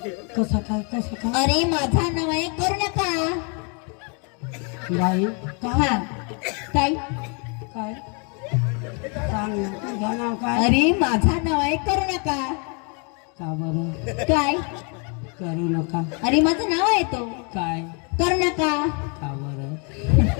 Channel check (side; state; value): right; quieter; 35.8 dB